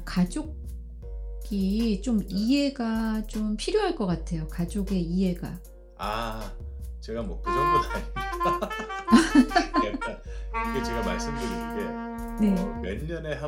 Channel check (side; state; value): both; identical; correlation 1.00